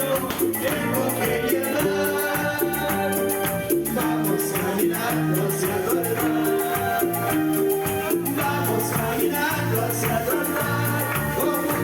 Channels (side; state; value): both; identical; correlation 1.00